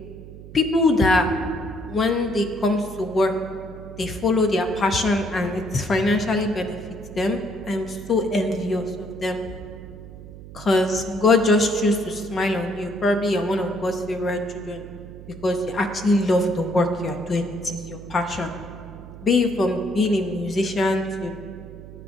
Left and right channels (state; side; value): noise; right; hum, 15 dB below the sound